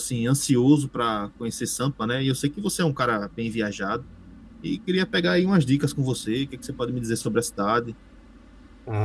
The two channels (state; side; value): identical; both; correlation 1.00